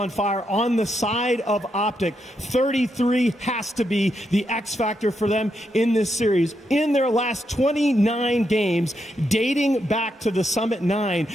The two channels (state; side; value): normal; both; correlation 0.82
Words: fire. On the side of Optic, 33 has to be the X factor for them in this series. In their last 29 games, dating back to the Summit 9,